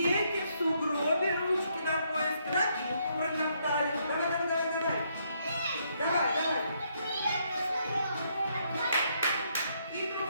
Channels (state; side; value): inverted; both; correlation -0.73